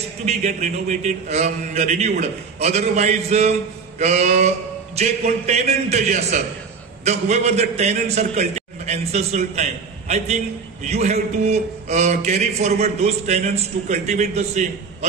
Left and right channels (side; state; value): left; quieter; 5.2 dB